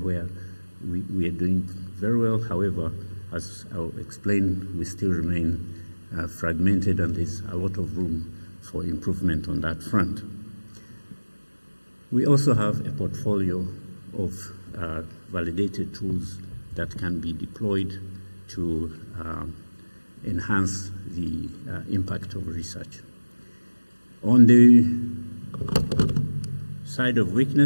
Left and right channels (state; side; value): inverted; both; correlation -1.00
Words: we are doing very well. However, as I'll explain, we still remain fragmented, and there's a lot of room for improvement on that front. We also have a portfolio of validated tools that can be deployed to enhance the impact of research. On the side of